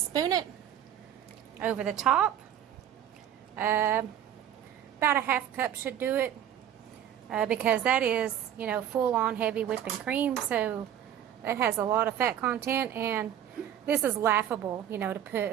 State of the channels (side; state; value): left; quieter; 10.4 dB